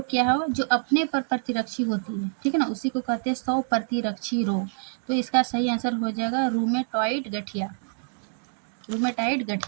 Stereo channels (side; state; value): left; silent; digital silence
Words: क्या है, जो अपने पर प्रतिरक्षी होती है, ठीक है ना, उसी को कहते हैं सौ प्रतिरक्षी रोग। तो इसका सही आंसर हो जाएगा रूमेटॉइड गठिया, रूमेटाइड